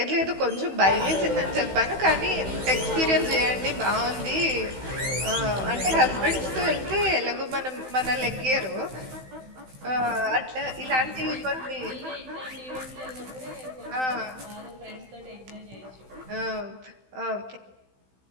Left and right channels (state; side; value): late; left; 16 ms